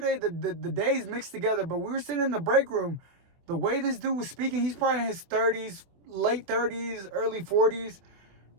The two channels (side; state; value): left; late; 24 ms